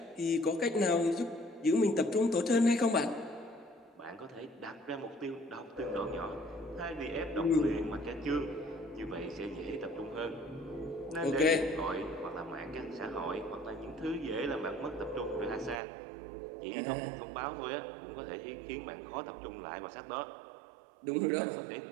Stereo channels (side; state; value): left; drops out; at 15.8 s